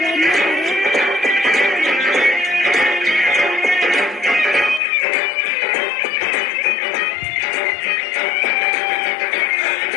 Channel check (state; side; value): drops out; right; at 4.8 s